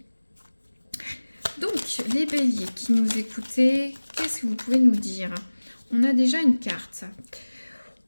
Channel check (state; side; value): inverted; both; correlation -1.00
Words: Donc, les béliers qui nous écoutez, qu'est-ce que vous pouvez nous dire? On a déjà une carte.